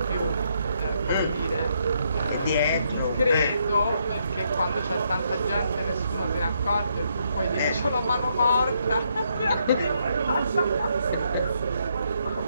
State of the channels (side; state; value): both; inverted; correlation -0.75